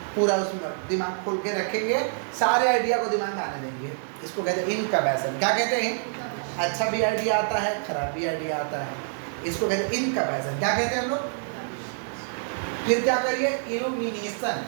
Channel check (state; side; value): silent; left; 61 dB below the other